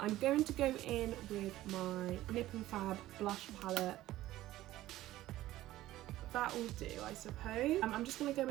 going to go in with my NIP+FAB blush palette. That will do, I suppose. I'm just going to go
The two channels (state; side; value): quieter; left; 15.3 dB